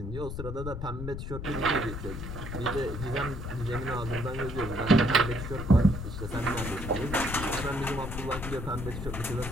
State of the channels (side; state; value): left; noise; rumble, 6 dB below the sound